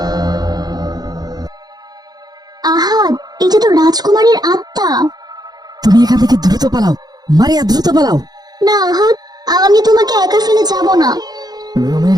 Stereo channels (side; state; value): left; late; 0.19 ms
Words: আহাদ, এটা তো রাজকুমারীর আত্মা। তুমি এখান থেকে দ্রুত পালাও, মারিয়া দ্রুত পালাও। না আহাদ, আমি তোমাকে একা ফেলে যাব না।